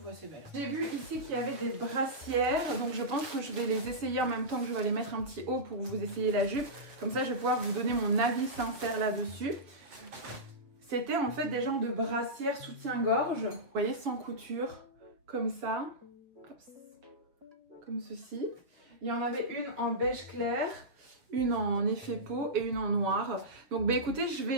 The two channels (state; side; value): late; left; 7.2 ms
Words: assez belle. J'ai vu ici qu'il y avait des brassières, donc je pense que je vais les essayer en même temps que je vais aller mettre un petit haut pour vous essayer la jupe. Comme ça, je vais pouvoir vous donner mon avis sincère là-dessus. C'était en fait des genres de brassières soutien-gorge, vous voyez, sans couture, comme ça. Hop. Comme ceci. Il y en avait une en beige clair, une en effet peau et une en noir. Donc bah écoutez, je